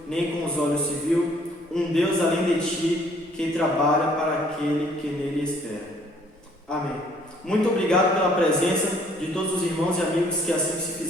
nem com os olhos se viu, um Deus além de ti, que trabalha para aquele que nele espera. Amém. Muito obrigado pela presença de todos os irmãos e amigos que assim se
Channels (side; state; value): both; normal; correlation 0.61